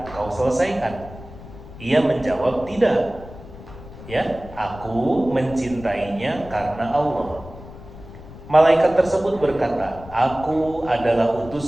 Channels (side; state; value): left; noise; rumble, 16 dB below the sound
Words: kau selesaikan? Ia menjawab, tidak. Ya, aku mencintainya karena Allah. Malaikat tersebut berkata, aku adalah